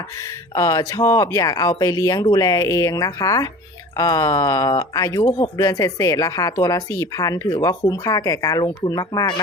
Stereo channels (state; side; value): normal; both; correlation 0.40